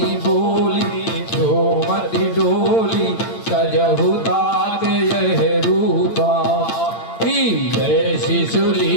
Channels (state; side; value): late; right; 8.8 ms